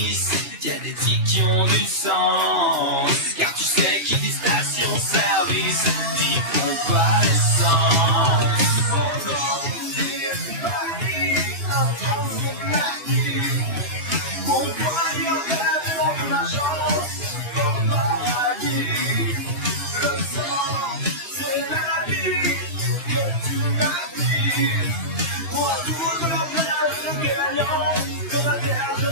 y a des tics qui ont du sens. Car tu sais qui dit station-service, dit pompe à essence.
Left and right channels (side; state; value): left; late; 2.9 ms